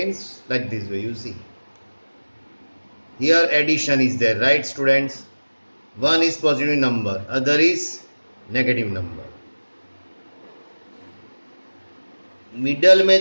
like this way, you see. Here addition is there, right students? One is positive number, other is negative number. Middle में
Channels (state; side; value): inverted; both; correlation -1.00